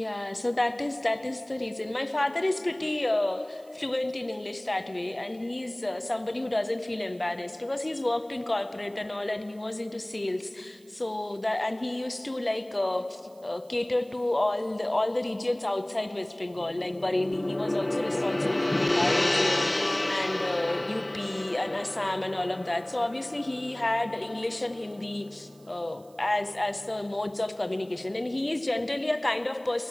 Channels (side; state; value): right; noise; hiss, 28 dB below the sound